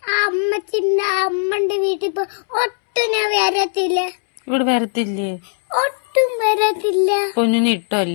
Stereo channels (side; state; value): right; silent; 67 dB below the other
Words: അമ്മച്ചിന്റെ അമ്മന്റെ വീട്ടിൽ പോ ഒട്ടും ഞാൻ വരത്തില്ല. ഇവിടെ വരത്തില്ലേ? ഒട്ടും വരത്തില്ല. പൊന്നിനെ